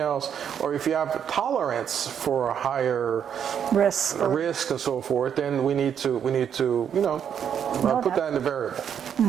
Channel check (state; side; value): quieter; left; 8.4 dB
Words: or if you have tolerance for a higher risk and so forth, then we need to you know put that in the variable.